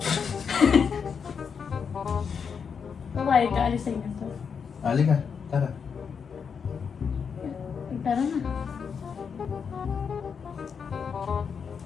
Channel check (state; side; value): quieter; right; 6.4 dB